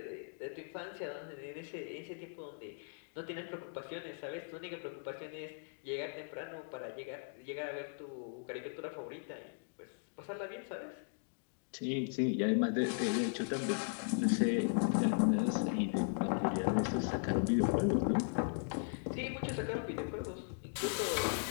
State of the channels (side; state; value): right; silent; digital silence